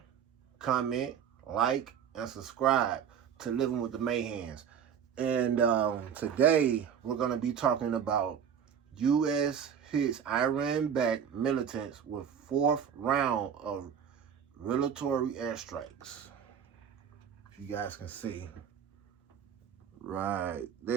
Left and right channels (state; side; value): quieter; left; 8.0 dB